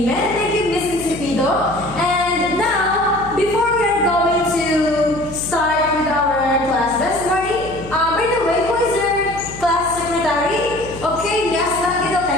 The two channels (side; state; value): left; noise; hum, 15 dB below the sound